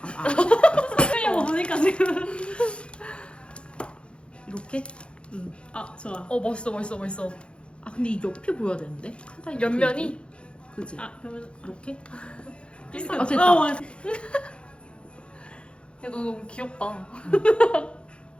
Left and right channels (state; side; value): late; right; 0.057 ms